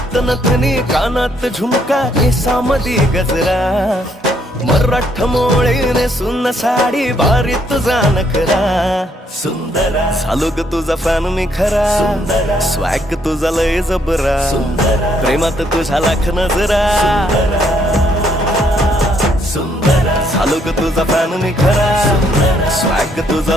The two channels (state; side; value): normal; both; correlation 0.70